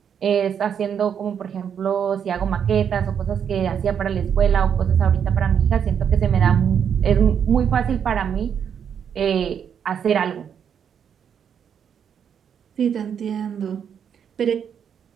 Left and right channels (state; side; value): quieter; left; 8.0 dB